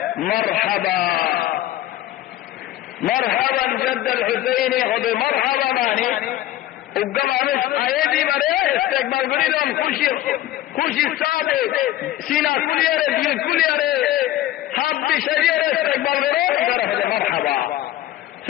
মারহাবা মারহাবান জদ্দ আল হুসাইনি হবে মারহাবা মানে উগ্র মানুষ আয়েদি মারে ইস্তেকবাল করিলাম খুশি সাথে সিনা কুলিয়ারে দিল কুলিয়ারে হাত দিয়ে শরীরে ইস্তেকবাল করে এরা হলে মারহাবা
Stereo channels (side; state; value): right; quieter; 14.2 dB